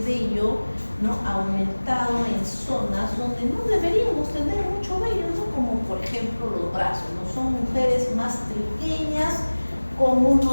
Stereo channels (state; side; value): inverted; both; correlation -1.00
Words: vello, ¿no? Aumentado en zonas donde no deberíamos tener mucho vello, ¿no? Como por ejemplo los brazos, ¿no? Son mujeres más pequeñas, con